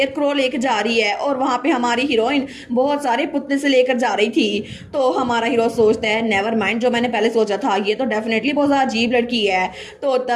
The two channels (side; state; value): both; identical; correlation 1.00